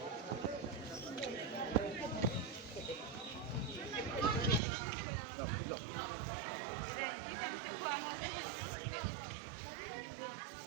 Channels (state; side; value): drops out; left; at 4.6 s